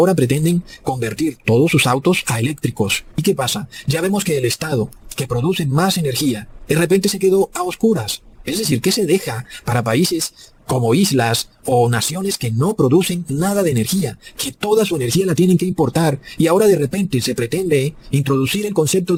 pretenden convertir todos sus autos a eléctricos. ¿Y qué pasa? Ya vemos que el Estado, que produce más energía, de repente se quedó a oscuras. Es decir, que se deja para países como islas o naciones que no producen nada de energía, que toda su energía la tienen que importar, y ahora de repente se pretende introducir el concepto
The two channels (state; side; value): identical; both; correlation 1.00